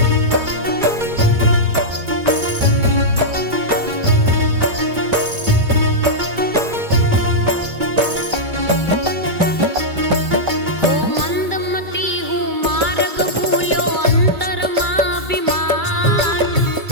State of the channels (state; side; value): late; left; 2.3 ms